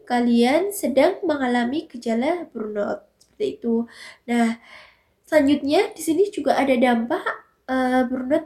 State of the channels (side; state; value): both; identical; correlation 1.00